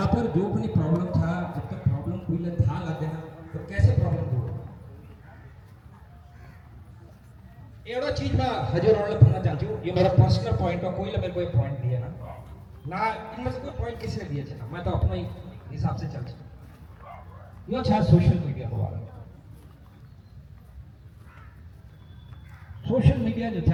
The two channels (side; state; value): both; identical; correlation 1.00